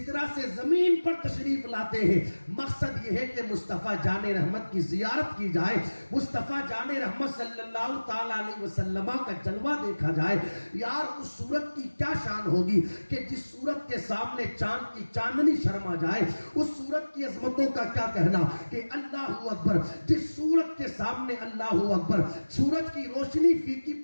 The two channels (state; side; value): inverted; both; correlation -1.00